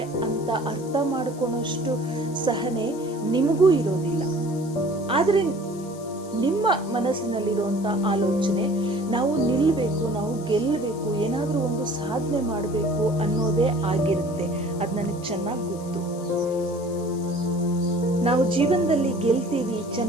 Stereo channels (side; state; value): left; noise; hiss, 21 dB below the sound